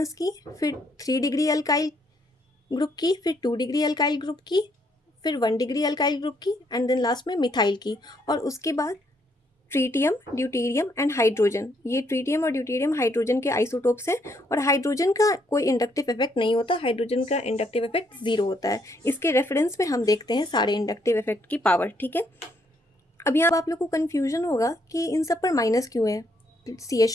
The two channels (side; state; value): both; normal; correlation 0.72